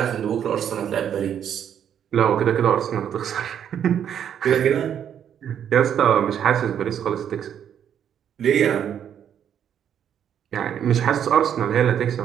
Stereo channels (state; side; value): quieter; left; 9.1 dB